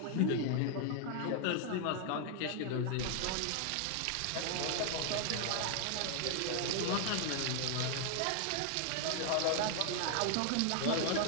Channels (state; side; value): different; both; correlation 0.00